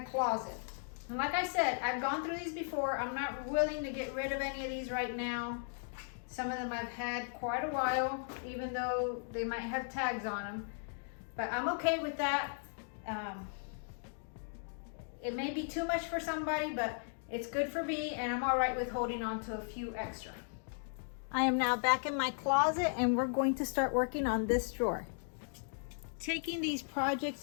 And like I said, I've gone through these before. I'm not willing to get rid of any of these right now. Some of them I've had quite a while, even though they might have tags on them. But I'm okay with that. It may be too much for somebody, but it's good for me, and I'm all right with holding on to a few extra. I am now back in my closet, and we're going to start working on this drawer. Taking these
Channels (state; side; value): silent; right; digital silence